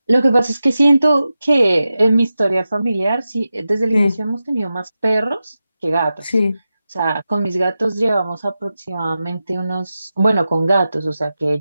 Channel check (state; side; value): inverted; both; correlation -0.92